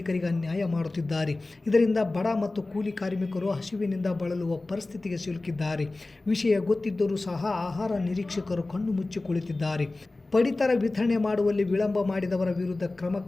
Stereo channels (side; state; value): right; quieter; 3.1 dB